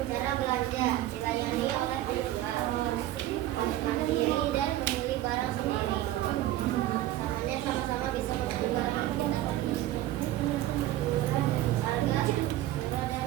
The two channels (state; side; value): quieter; left; 14.5 dB